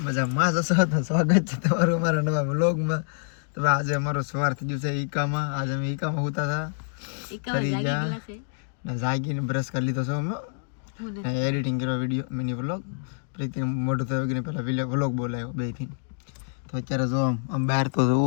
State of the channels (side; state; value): right; silent; digital silence